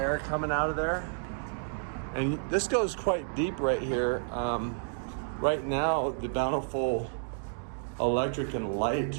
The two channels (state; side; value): silent; left; digital silence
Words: coming out of there. And this goes quite deep right here. Right now, the Bountiful electric and light